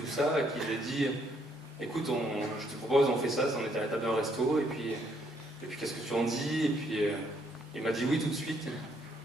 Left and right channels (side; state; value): both; normal; correlation 0.70